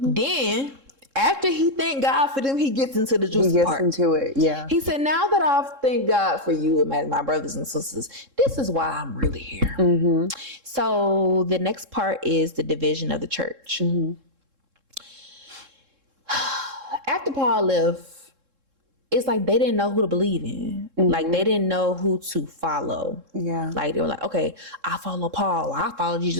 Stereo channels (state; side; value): late; left; 3.7 ms